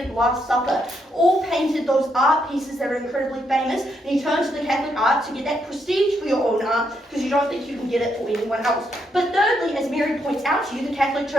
the Last Supper, all painted those art pieces that are incredibly famous, and you turn to the Catholic art to get that prestige for your own art because you don't think you can get it for anyone else. But thirdly, as Mary points out to you, the Catholic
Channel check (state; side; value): normal; both; correlation 0.78